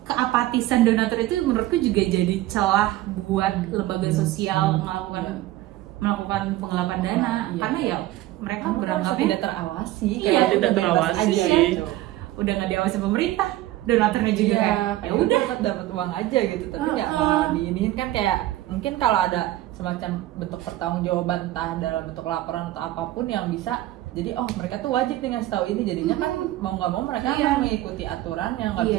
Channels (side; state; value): left; quieter; 15.6 dB